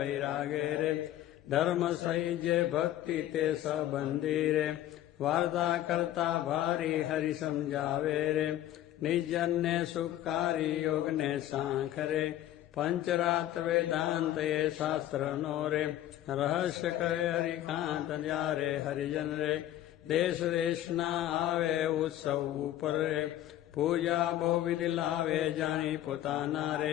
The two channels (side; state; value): right; quieter; 13.0 dB